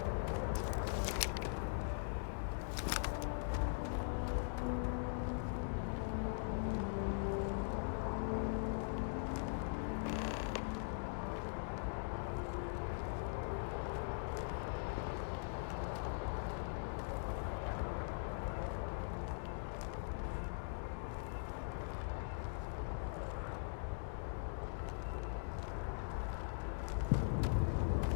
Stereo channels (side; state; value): right; silent; digital silence